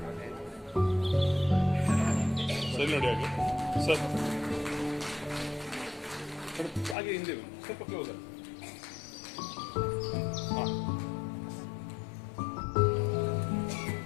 ಸರಿ ನೋಡಿ ಹಾಗೆ ಸರ್ ಹಾಗೆ ಹಿಂದೆ ಸ್ವಲ್ಪ ಕ್ಲೋಸ್ ಹಾಂ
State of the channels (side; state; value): right; drops out; at 7.0 s